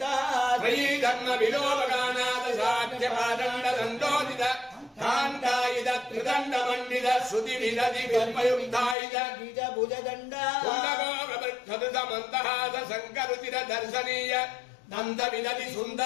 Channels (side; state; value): right; drops out; at 9.0 s